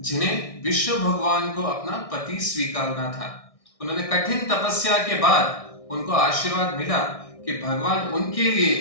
जिन्हें विष्णु भगवान को अपना पति स्वीकारना था। उन्होंने कठिन तपस्या के बाद उनको आशीर्वाद मिला कि भगवान उनके लिए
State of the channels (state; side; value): late; right; 1.6 ms